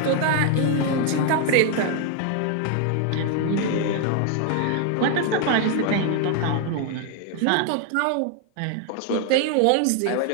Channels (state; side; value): different; both; correlation 0.00